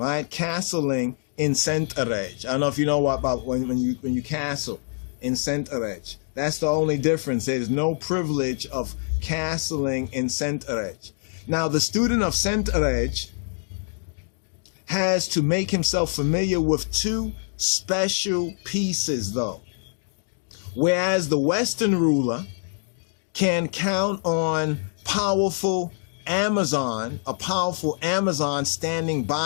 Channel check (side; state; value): right; silent; digital silence